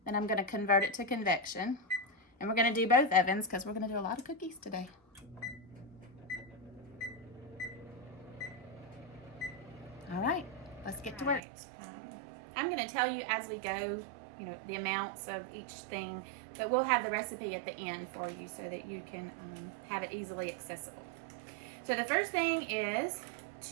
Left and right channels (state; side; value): drops out; left; at 11.4 s